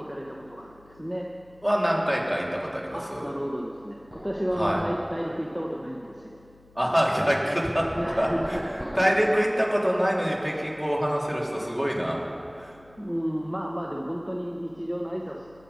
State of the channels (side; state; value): left; noise; hum, 27 dB below the sound